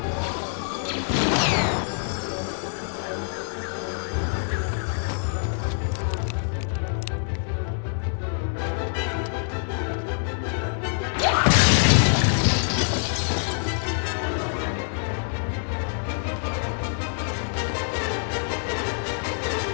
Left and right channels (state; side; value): silent; right; 61 dB below the other